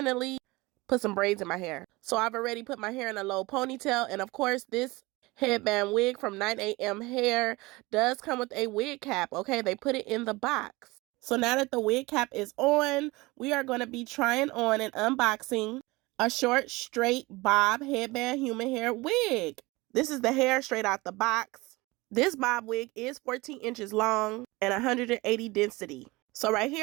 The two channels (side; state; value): left; quieter; 22.3 dB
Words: put some braids in my hair. So I've already put my hair in a low ponytail, and of course, this headband wig from 9am Hair does come with a wig cap, okay? They put it in the box. So now that the wig cap is on, we are going to be trying on and unboxing a short, straight bob headband human hair wig. This is the hair straight out the box. This bob wig is 14 inches long and 180 density. So right